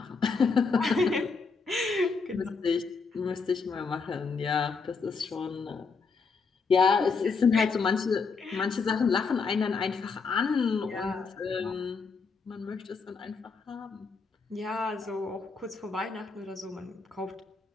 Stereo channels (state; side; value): quieter; right; 4.8 dB